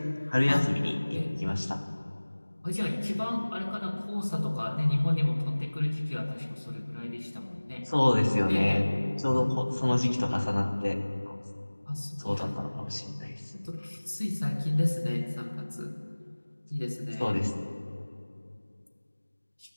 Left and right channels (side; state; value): both; inverted; correlation -1.00